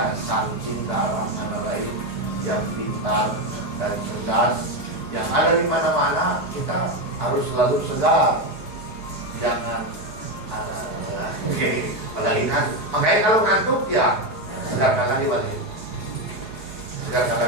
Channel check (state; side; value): late; right; 4.8 ms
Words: sang cinta orang lain yang pintar dan cerdas, yang ada di mana-mana. Kita harus selalu segar, jangan apalagi ngantuk. Makanya kalau ngantuk ya segarkan lagi balik, segarkan